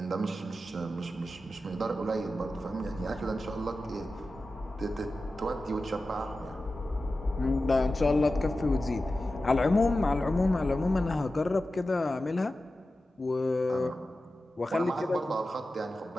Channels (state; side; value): normal; both; correlation 0.93